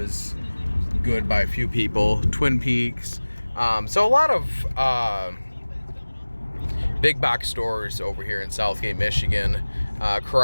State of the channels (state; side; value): inverted; both; correlation -1.00